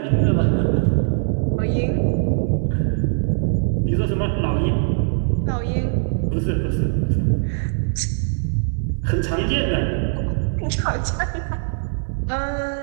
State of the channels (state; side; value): silent; left; 60 dB below the other